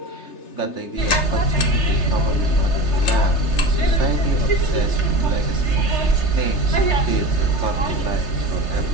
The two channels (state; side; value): late; right; 3.3 ms